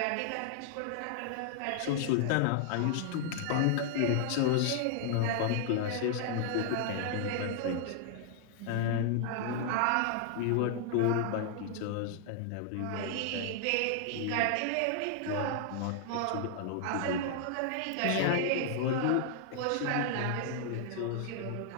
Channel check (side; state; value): both; different; correlation 0.00